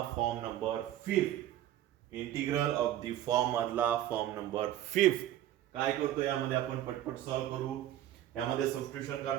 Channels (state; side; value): quieter; left; 12.7 dB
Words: form number 5. Integral of the form मधला फॉर्म नंबर 5. काय करतो यामध्ये आपण पटपट सॉल्व्ह करू. यामध्ये सबस्टिट्यूशन